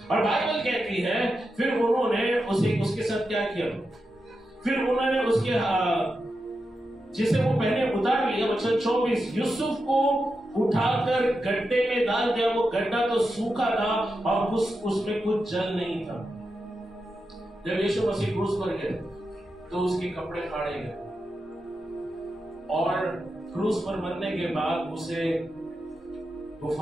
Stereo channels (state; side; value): normal; both; correlation 0.88